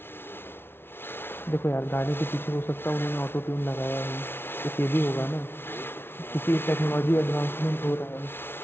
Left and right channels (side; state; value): right; late; 0.11 ms